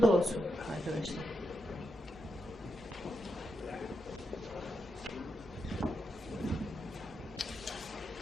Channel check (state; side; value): normal; both; correlation 0.85